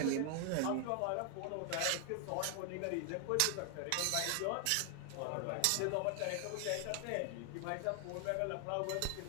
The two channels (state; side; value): different; both; correlation 0.00